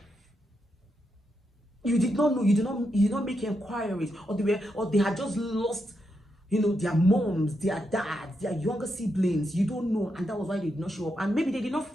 You did not know, you did not make inquiries, or they had just lost, their moms, their dads, their younger siblings. You don't know, and that was why they did not show up. And maybe they did not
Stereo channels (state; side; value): normal; both; correlation 0.83